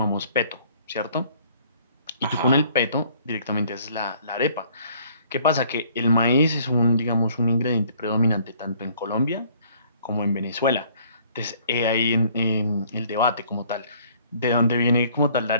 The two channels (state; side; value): inverted; both; correlation -0.59